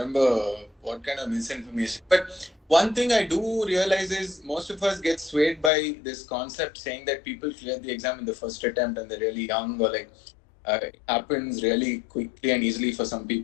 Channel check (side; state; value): right; drops out; at 5.7 s